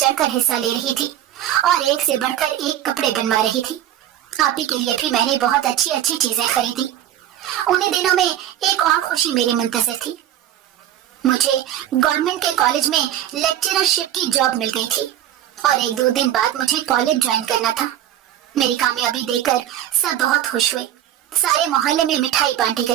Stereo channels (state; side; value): quieter; left; 11.7 dB